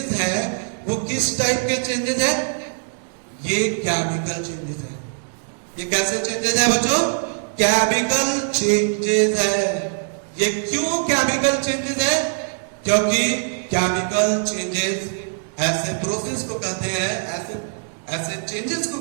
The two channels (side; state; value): left; silent; digital silence